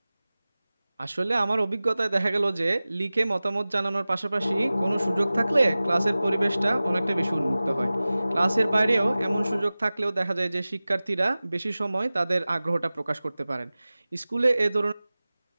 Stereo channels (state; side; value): inverted; both; correlation -0.98